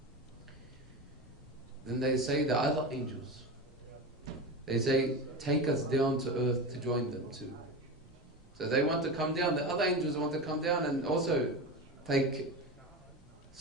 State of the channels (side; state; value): both; normal; correlation 0.24